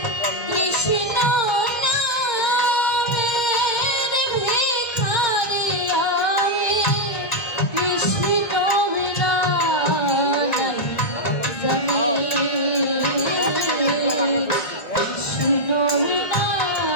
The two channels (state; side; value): late; right; 2.1 ms